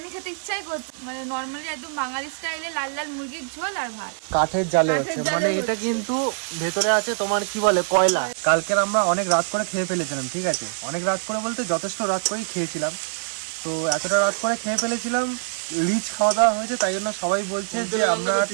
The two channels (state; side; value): silent; left; digital silence